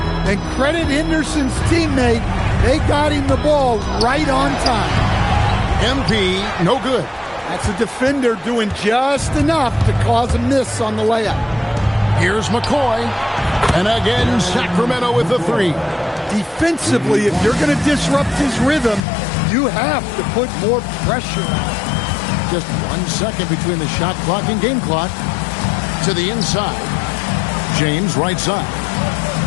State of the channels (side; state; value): right; drops out; at 19.1 s